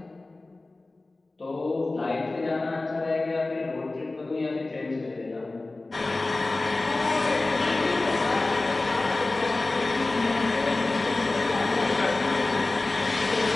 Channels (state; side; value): quieter; right; 3.1 dB